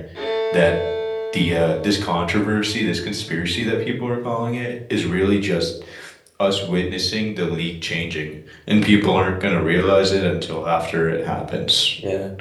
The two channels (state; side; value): identical; both; correlation 1.00